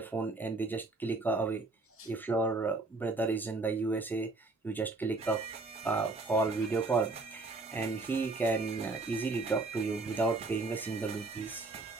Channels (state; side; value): quieter; left; 3.4 dB